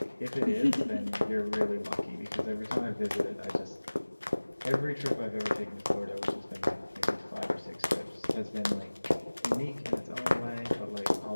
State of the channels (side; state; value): both; inverted; correlation -1.00